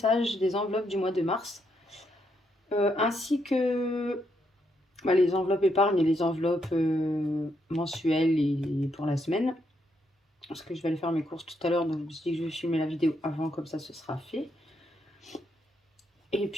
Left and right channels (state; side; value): normal; both; correlation 0.78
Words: des enveloppes du mois de mars, ainsi que les enveloppes épargne et les enveloppes mensuelles et pour la semaine. Parce que je vais aller faire mes courses tout à l'heure, donc je me suis dit que je vais filmer la vidéo avant, comme ça ce sera fait. Et